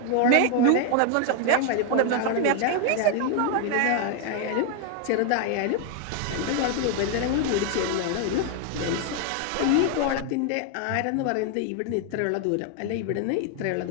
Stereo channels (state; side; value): different; both; correlation 0.01